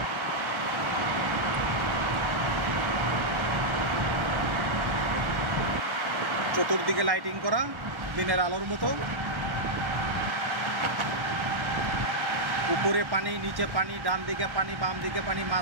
চতুর্দিকে লাইটিং করা দিনের আলোর মতো। উপরে পানি, নিচে পানি, ডান দিকে পানি, বাম দিকে পানি,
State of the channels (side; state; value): left; late; 1.1 ms